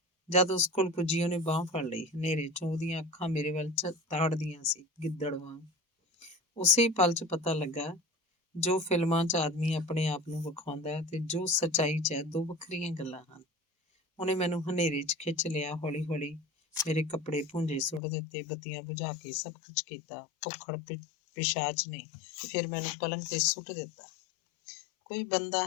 ਜਦ ਉਸ ਕੋਲ ਪੁੱਜੀ, ਉਹਨੇ ਬਾਂਹ ਫੜ ਲਈ। ਹਨੇਰੇ 'ਚੋਂ ਉਹਦੀਆਂ ਅੱਖਾਂ ਮੇਰੇ ਵੱਲ ਤਾੜਦੀਆਂ ਸੀ, ਗਿੱਦੜ ਵਾਂਗ। ਉਸੇ ਪਲ 'ਚ ਪਤਾ ਲੱਗਾ, ਜੋ ਫਿਲਮਾਂ 'ਚ ਆਦਮੀ ਆਪਣੇ ਆਪ ਨੂੰ ਵਿਖਾਉਂਦਾ ਹੈ ਤੇ ਜੋ ਸੱਚਾਈ 'ਚ ਹੈ, ਦੋ ਵੱਖਰੀਆਂ ਗੱਲਾਂ ਹਨ। ਉਹਨੇ ਮੈਨੂੰ ਹਨੇਰੇ 'ਚ ਖਿੱਚ ਲਿਆ, ਹੌਲੀ ਹੌਲੀ ਮੇਰੇ ਕੱਪੜੇ ਭੁੰਜੇ ਸੁੱਟ ਦਿੱਤੇ, ਬੱਤੀਆਂ ਬੁਝਾ ਕੇ ਸਭ ਕੁਝ ਕੀਤਾ। ਭੁੱਖੜ ਪਿਸ਼ਾਚ ਨੇ ਫਿਰ ਮੈਨੂੰ ਪਲੰਘ ਤੇ ਸੁੱਟ ਦਿੱਤਾ। ਕੋਈ ਬੰਦਾ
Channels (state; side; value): drops out; right; at 18.0 s